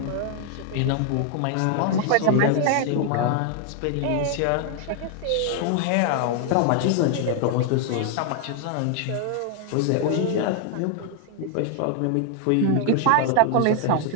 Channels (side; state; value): both; different; correlation 0.00